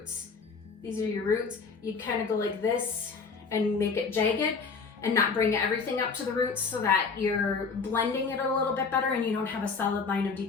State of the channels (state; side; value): quieter; right; 5.0 dB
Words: these are your roots, you kind of go like this and make it jagged and not bring everything up to the roots, so that you're blending it a little bit better and you don't have a solid line